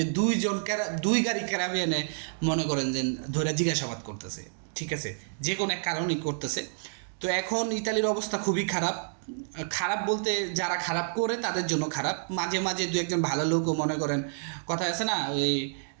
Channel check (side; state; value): left; silent; digital silence